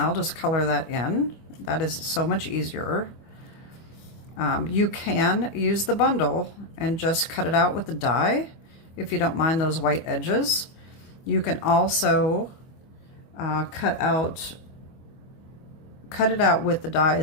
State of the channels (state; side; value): late; right; 25 ms